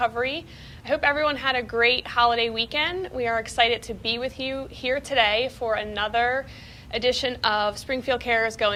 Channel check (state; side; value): identical; both; correlation 1.00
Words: I hope everyone had a great holiday weekend. We are excited to be with you here today for another edition of Springfield Cares